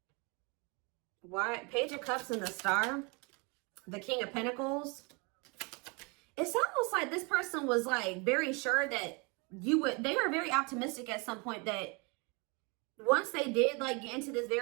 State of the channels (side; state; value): left; quieter; 30.3 dB